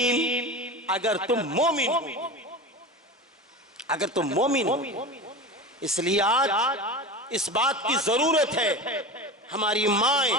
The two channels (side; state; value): both; normal; correlation 0.28